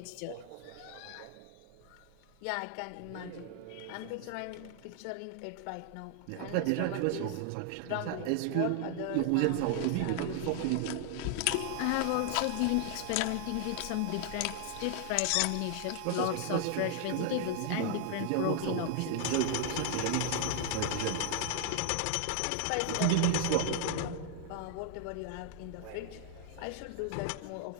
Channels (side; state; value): both; different; correlation 0.00